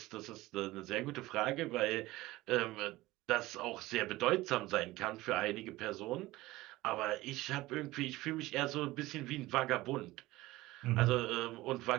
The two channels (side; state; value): left; quieter; 18.5 dB